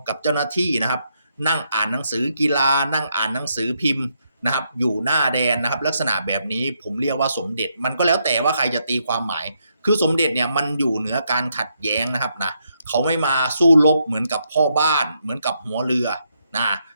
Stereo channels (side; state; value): both; inverted; correlation -0.78